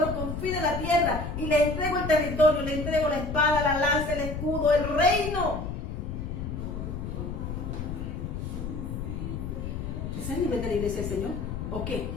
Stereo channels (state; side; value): noise; left; rumble, 5 dB below the sound